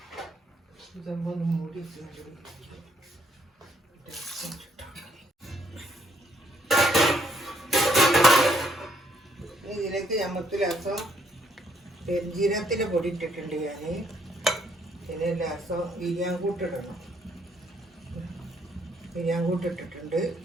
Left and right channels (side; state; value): both; normal; correlation 0.69